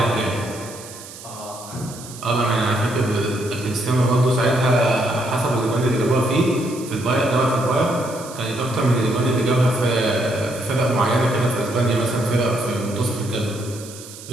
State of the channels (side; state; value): right; noise; hiss, 15 dB below the sound